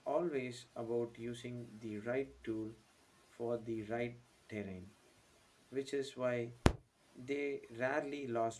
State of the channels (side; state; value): both; identical; correlation 1.00